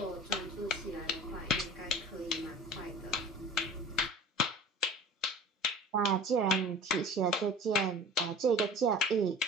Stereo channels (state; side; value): normal; both; correlation 0.41